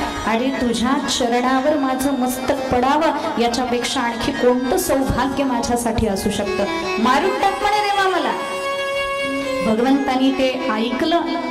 अरे तुझ्या चरणावर माझं मस्तक पडावं याच्यापेक्षा आणखी कोणतं सौभाग्य माझ्यासाठी असू शकतं, मारून टाक म्हणे देवा मला. भगवंतानी ते ऐकलं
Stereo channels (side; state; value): both; identical; correlation 1.00